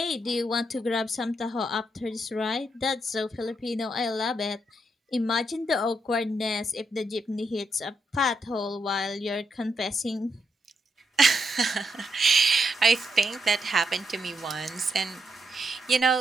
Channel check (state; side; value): normal; both; correlation 0.80